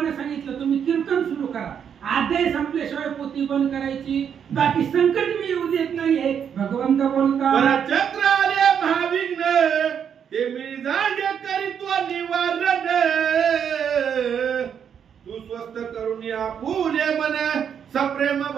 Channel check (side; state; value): left; quieter; 8.0 dB